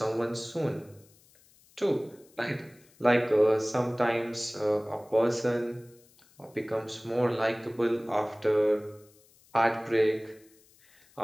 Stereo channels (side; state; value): left; noise; hiss, 29 dB below the sound